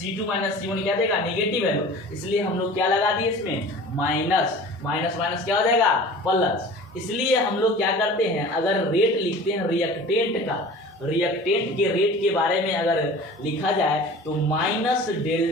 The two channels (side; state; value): both; normal; correlation 0.41